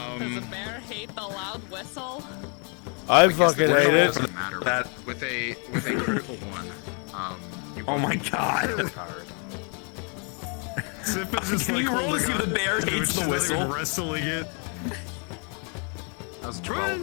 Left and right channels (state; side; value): quieter; right; 38.1 dB